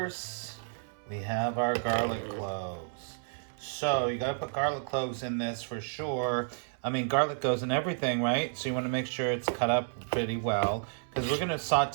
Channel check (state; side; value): silent; left; 57 dB below the other